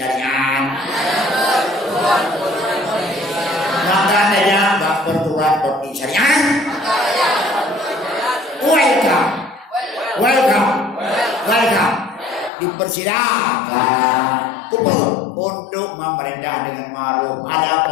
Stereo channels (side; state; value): right; drops out; at 12.5 s